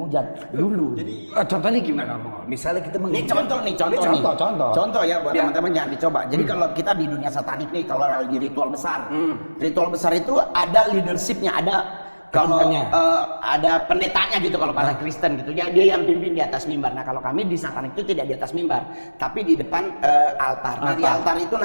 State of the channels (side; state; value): both; inverted; correlation -1.00